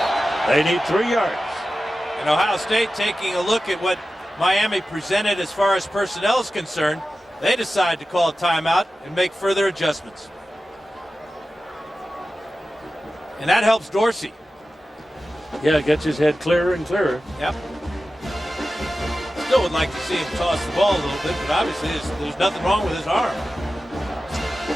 They need 3 yards. And Ohio State taking a look at what Miami presented as far as personnel is concerned. They decide to call a timeout and make further adjustments. And that helps Dorsey. Yeah, it gets his head clearer and clearer. Yep. Still would like to see him toss the ball a little bit, but obviously there's nothing wrong with his arm.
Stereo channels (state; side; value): normal; both; correlation 0.94